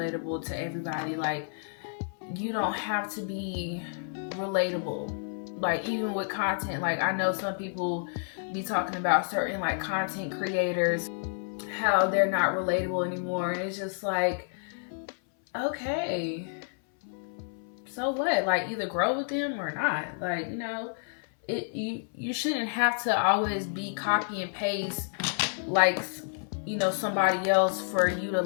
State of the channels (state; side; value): silent; right; 58 dB below the other